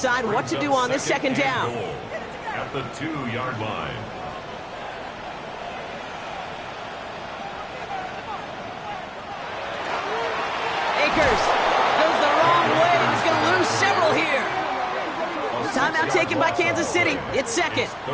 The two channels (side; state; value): both; identical; correlation 1.00